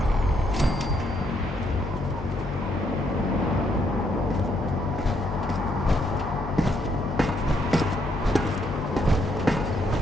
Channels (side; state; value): both; normal; correlation 0.74